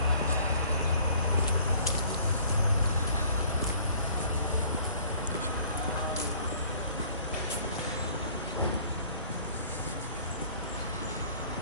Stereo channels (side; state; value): both; inverted; correlation -0.55